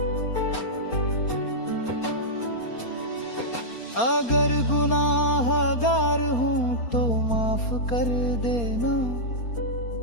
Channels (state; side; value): late; right; 4.3 ms